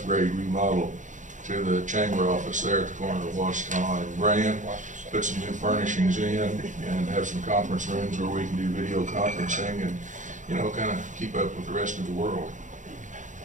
remodel to the chamber office there at the corner of Washington and Grand. Put some new furnishings in and have some conference rooms where we can do video conferencing and, kind of keep up with the rest of the world.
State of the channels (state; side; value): late; left; 0.36 ms